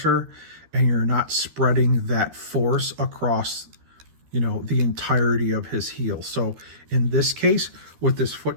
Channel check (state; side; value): late; left; 13 ms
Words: and you're not spreading that force across, the entirety of his heel. So in this case, with this